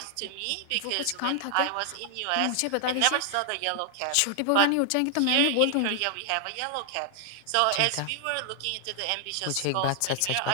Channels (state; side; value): different; both; correlation 0.00